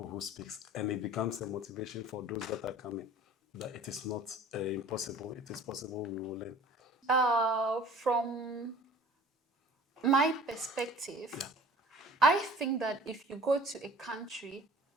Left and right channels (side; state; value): both; normal; correlation 0.47